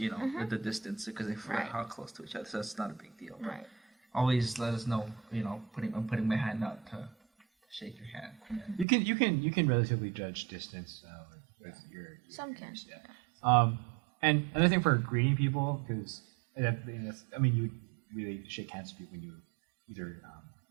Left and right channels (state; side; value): drops out; left; at 8.8 s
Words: with the distance, because if we're how close to each other, so that's not a big deal. Right. Always let us know, I'm putting my hand out to shake your hand. You can relatively judge distance with your Some can. Yeah. And another thing for greeting people, because you really shake hands with people when you either